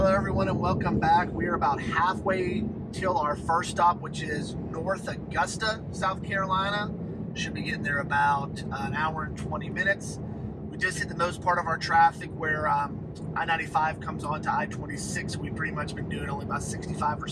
everyone, and welcome back. We are about halfway till our first stop, which is North Augusta, South Carolina. Should be getting there about an hour and 20 minutes. We just hit the most part of our traffic where I-95 comes on to I-26. We've pretty much been doing only about 65 or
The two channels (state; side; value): identical; both; correlation 1.00